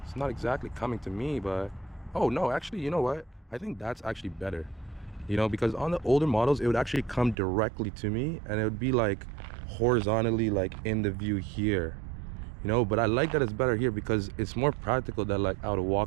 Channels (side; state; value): left; drops out; at 7.4 s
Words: It's not exactly coming to me, but oh no, actually, you know what? I think that's actually better. You know, because on the older models, it would actually come directly to me and it would be like horizontally like in the view here. You know, but I like that it's better here because it's more practical that like I would